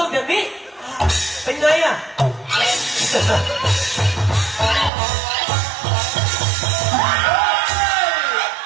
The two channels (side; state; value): left; drops out; at 4.9 s